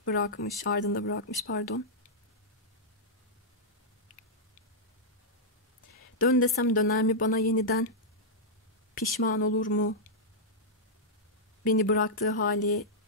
bırakmış pardon. Dön desem döner mi bana yeniden? Pişman olur mu? Beni bıraktığı hali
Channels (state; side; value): normal; both; correlation -0.09